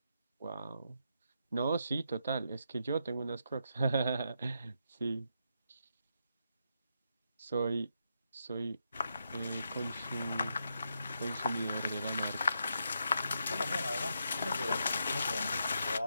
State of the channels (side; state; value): both; inverted; correlation -0.82